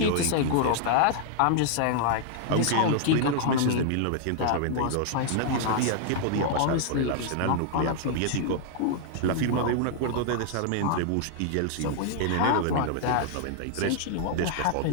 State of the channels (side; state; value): both; different; correlation -0.01